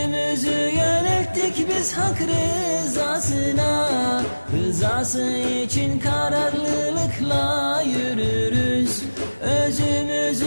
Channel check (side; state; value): both; inverted; correlation -1.00